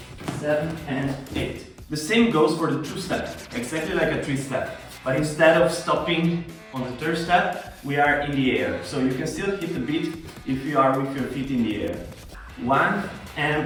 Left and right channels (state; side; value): identical; both; correlation 1.00